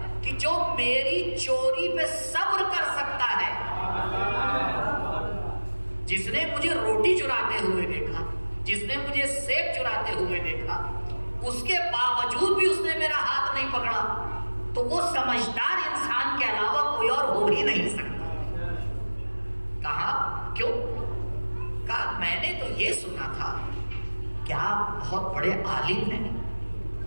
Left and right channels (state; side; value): inverted; both; correlation -1.00